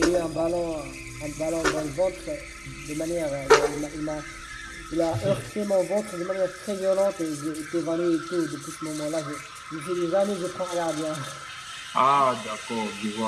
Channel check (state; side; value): identical; both; correlation 1.00